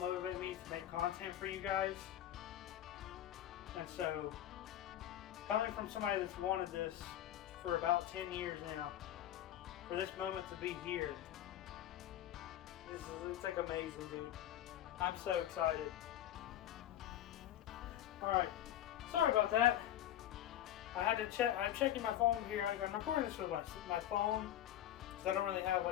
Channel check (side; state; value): right; quieter; 12.1 dB